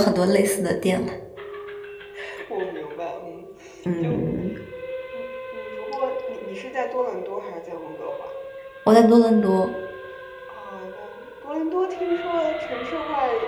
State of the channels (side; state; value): both; identical; correlation 1.00